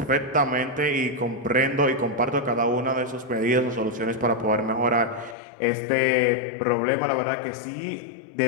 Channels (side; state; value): right; drops out; at 5.4 s